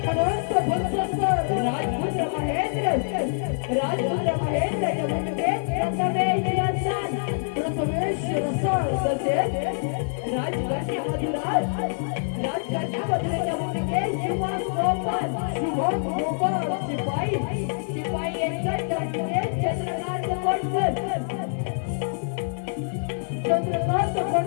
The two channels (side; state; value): right; silent; 61 dB below the other